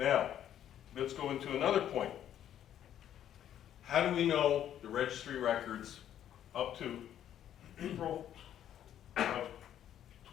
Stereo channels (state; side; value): quieter; right; 10.7 dB